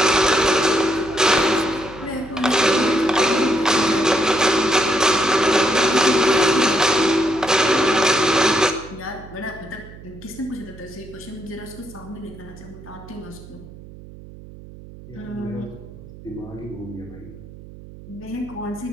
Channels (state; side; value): noise; right; hum, 17 dB below the sound